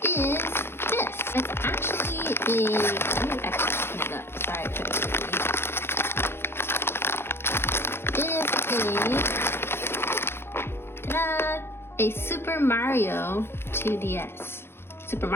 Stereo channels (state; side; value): late; right; 0.11 ms